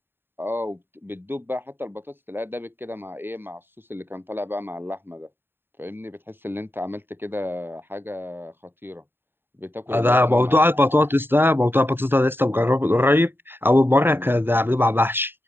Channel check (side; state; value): left; late; 0.10 ms